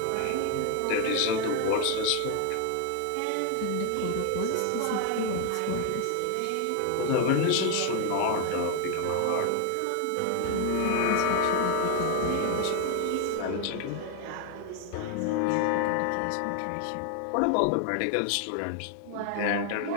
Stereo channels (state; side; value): different; both; correlation 0.00